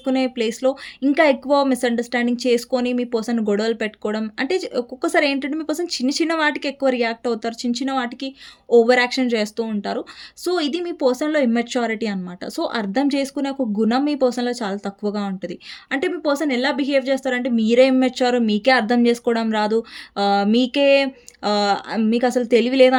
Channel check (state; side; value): identical; both; correlation 1.00